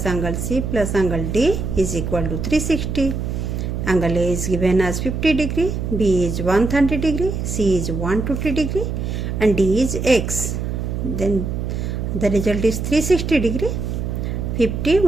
angle C plus angle D is equal to 360. Angle A is given as 50 degree, B is 130 degree, C is 120 degree and D is x. Then the result is 360 degree. 50,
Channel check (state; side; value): noise; right; hum, 3 dB below the sound